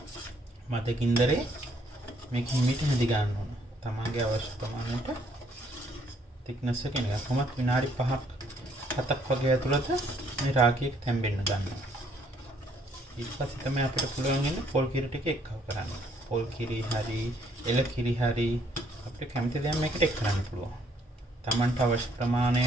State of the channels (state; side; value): normal; both; correlation 0.66